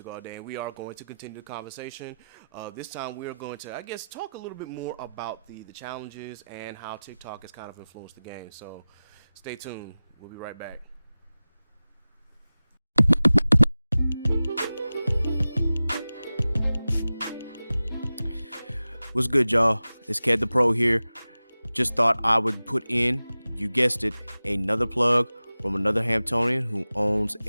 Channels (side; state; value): both; inverted; correlation -0.96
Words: all day, and we are going to continue the conversation. This time we are going to, I guess, talk a little bit more about the challenges and how TikTok has kind of influenced the game. So stay tuned. We'll be right back. What's good, y'all? It's Ked the Pro here. Just thought I would put in, you guessed it, another plug from another Hamptonian who owns